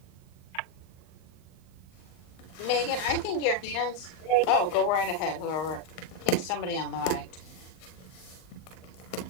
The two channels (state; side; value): late; right; 38 ms